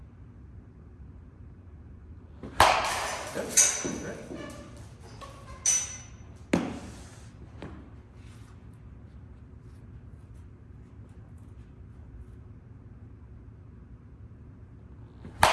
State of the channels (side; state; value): both; identical; correlation 1.00